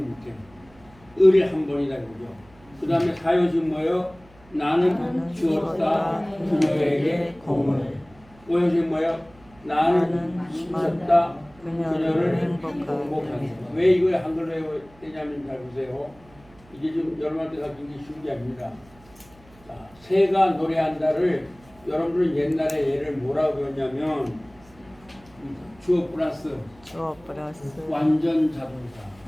못해요. 을이 한 번이다 이거죠. 그 다음에 사효식 뭐예요? 나는 주었다 그녀에게 공을. 오효식 뭐예요? 나는 주었다 그녀를 행복하게. 왜 이걸 한글로 해야 되냐면 잘 보세요. 이게 좀 여러분한테 가르친 게 쉬운 게 아닙니다. 자, 새가 노래한다를 여러분들은 옛날에 얘를 뭐라고 배웠냐면 주어 플러스 완전 자동사.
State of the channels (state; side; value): noise; right; hum, 26 dB below the sound